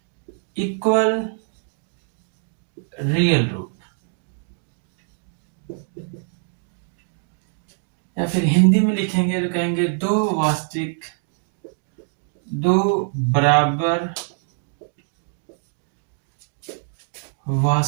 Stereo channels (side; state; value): left; silent; 61 dB below the other